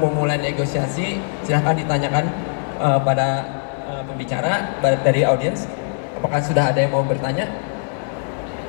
memulai negosiasi. Silahkan ditanyakan pada pembicara dari audiens. Apakah sudah ada yang mau bertanya?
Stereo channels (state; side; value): silent; right; digital silence